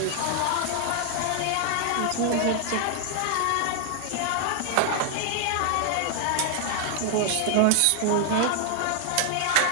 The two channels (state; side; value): different; both; correlation 0.00